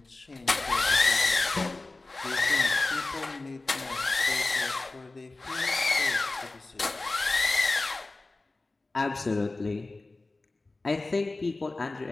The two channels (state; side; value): quieter; right; 3.2 dB